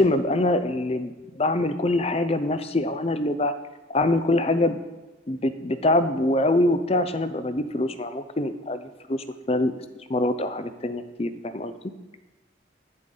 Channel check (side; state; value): both; normal; correlation 0.45